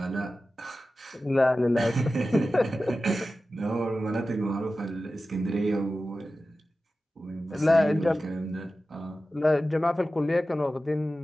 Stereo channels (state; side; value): normal; both; correlation 0.94